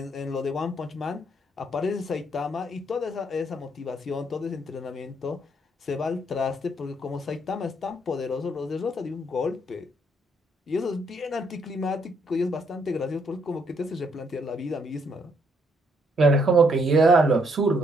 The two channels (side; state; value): both; normal; correlation 0.71